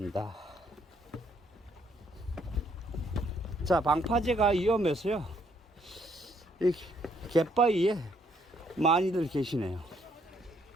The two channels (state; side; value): normal; both; correlation 0.69